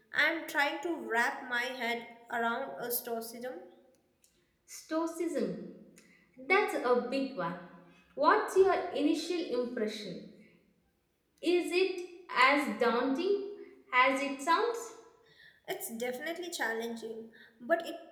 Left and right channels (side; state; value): both; identical; correlation 1.00